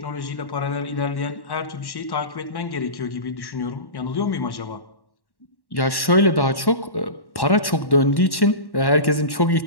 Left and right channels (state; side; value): late; right; 1.1 ms